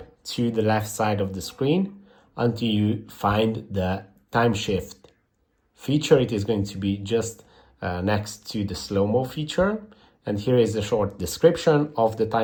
to the left side of the screen until you find the time shift feature. It is going to be just next to the slow-mo feature, and here is a short description of the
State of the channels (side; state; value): both; identical; correlation 1.00